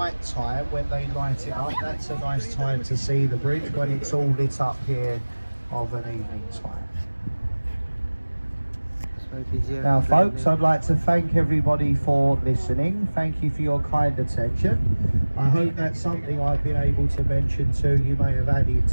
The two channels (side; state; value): both; inverted; correlation -1.00